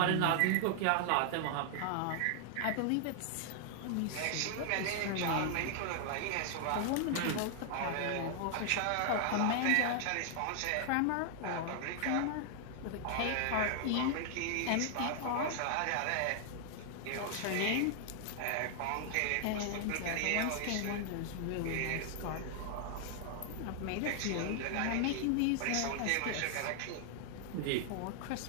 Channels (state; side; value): different; both; correlation 0.00